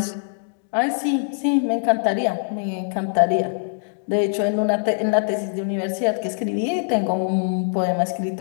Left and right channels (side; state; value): right; silent; digital silence